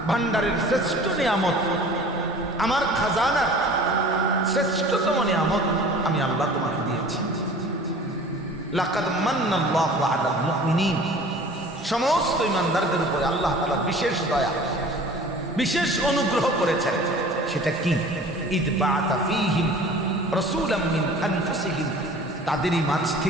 ভান্ডারের শ্রেষ্ঠ নিয়ামত, আমার খাজানার শ্রেষ্ঠতম নিয়ামত আমি আল্লাহ তোমাকে দিয়েছি। লাকাদ মান্নাল্লাহু আলাল মুমিনিন, সমস্ত ইমানদারদের উপরে আল্লাহ তাআলা বিশেষ দয়া, বিশেষ অনুগ্রহ করেছেন। সেটা কি? ইদ বাআতা ফীহিম রাসূলাম মিন আনফুসিহিম, তাদেরই মাঝ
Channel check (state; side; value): normal; both; correlation 0.45